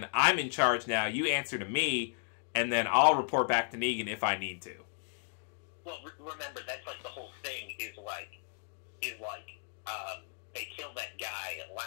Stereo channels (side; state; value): right; silent; digital silence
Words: I'm in charge now, you answer to me, and then I'll report back to Negan if I need to. Well, remember, that's like the whole thing is they killed that guy